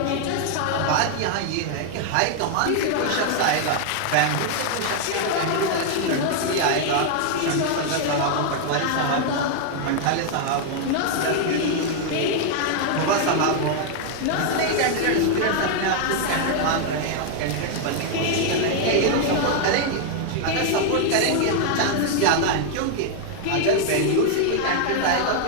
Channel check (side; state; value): both; different; correlation 0.00